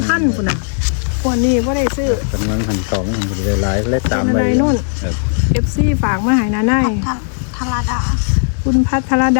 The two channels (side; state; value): right; silent; digital silence